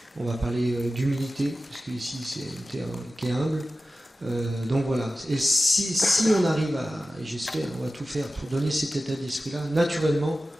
on va parler d'humilité, parce qu'ici c'est une terre qui est humble. Donc voilà, et si on arrive et j'espère, on va tout faire pour donner cet état d'esprit-là, naturellement,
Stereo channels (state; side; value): normal; both; correlation 0.95